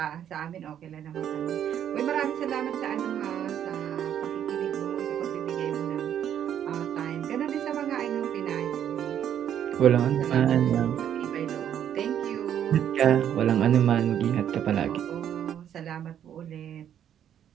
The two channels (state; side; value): quieter; left; 9.8 dB